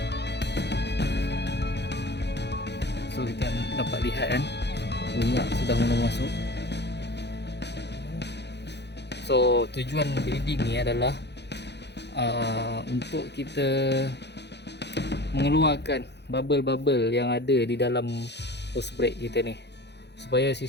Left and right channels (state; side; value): late; right; 0.50 ms